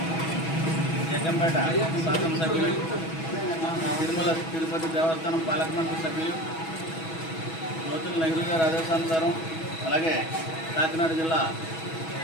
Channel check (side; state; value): right; late; 6.2 ms